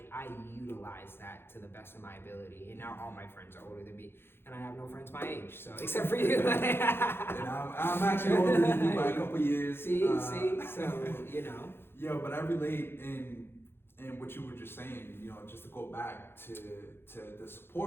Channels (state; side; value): late; right; 0.11 ms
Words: utilize that to the best of my ability. And now all my friends are older than me, and I have no friends my age, so except for you. And I'm actually older than you by a couple years. See, so Yo, but I relate in what you were just saying, just to go back to the